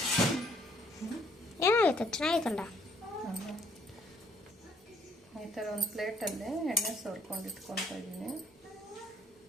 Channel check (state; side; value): normal; both; correlation 0.64